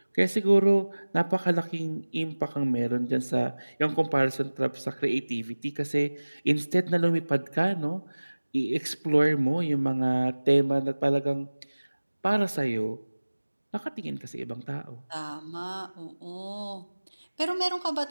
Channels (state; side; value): inverted; both; correlation -1.00